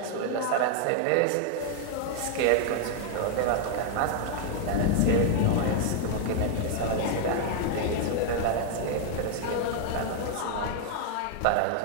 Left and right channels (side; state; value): both; different; correlation 0.00